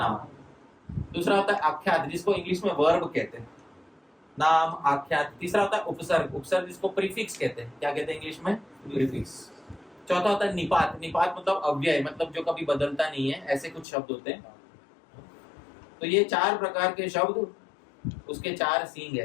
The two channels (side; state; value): right; drops out; at 13.9 s